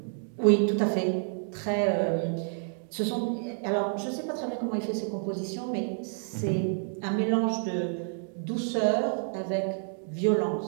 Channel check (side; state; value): left; silent; 58 dB below the other